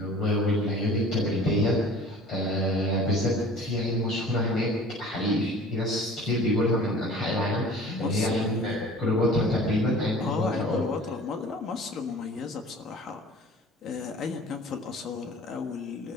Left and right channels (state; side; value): normal; both; correlation 0.45